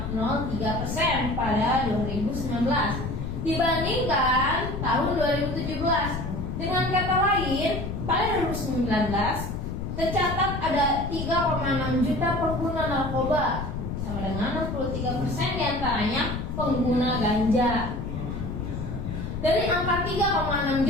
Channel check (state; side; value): noise; left; rumble, 5 dB below the sound